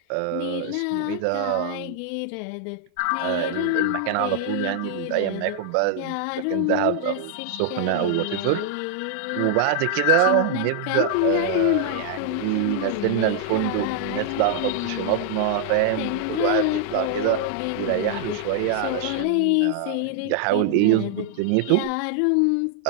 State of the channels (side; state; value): both; different; correlation -0.01